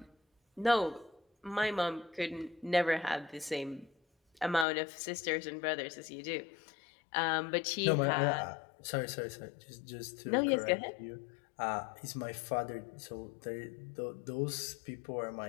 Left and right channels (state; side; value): drops out; right; at 4.7 s